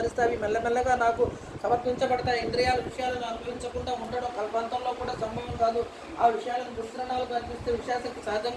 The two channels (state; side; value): identical; both; correlation 1.00